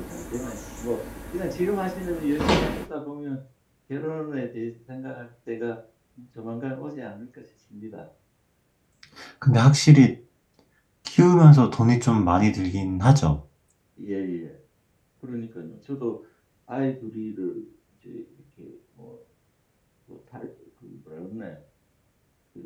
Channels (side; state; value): both; identical; correlation 1.00